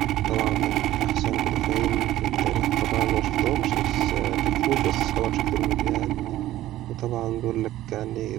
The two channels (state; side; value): quieter; left; 14.5 dB